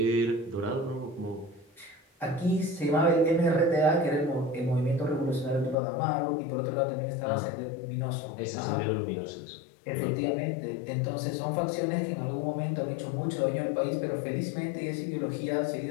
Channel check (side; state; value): right; drops out; at 5.8 s